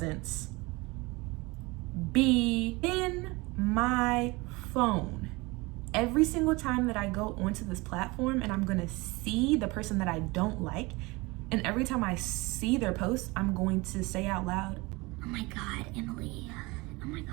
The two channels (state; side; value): quieter; left; 24.1 dB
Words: be in my phone every single time that I go onto this platform, and I'm gonna see the person that I don't like. And every time I see their post, I'm going to say out loud, oh my God, Emily. Oh my